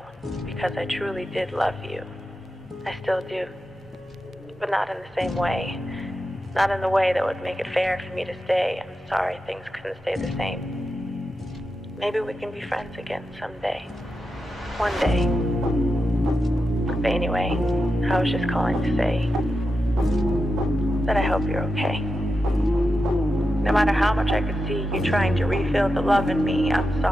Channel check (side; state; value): both; normal; correlation 0.89